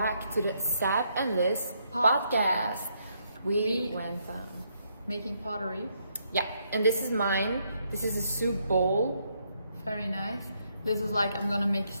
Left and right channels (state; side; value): inverted; both; correlation -0.75